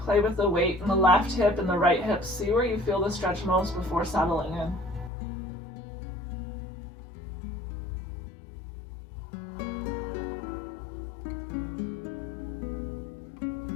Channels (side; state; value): right; drops out; at 5.1 s